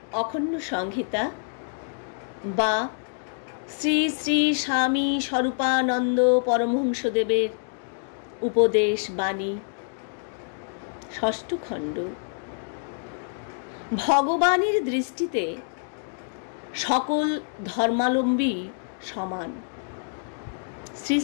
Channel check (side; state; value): right; silent; digital silence